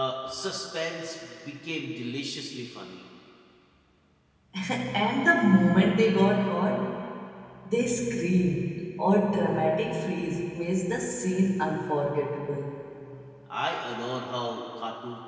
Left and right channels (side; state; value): both; identical; correlation 1.00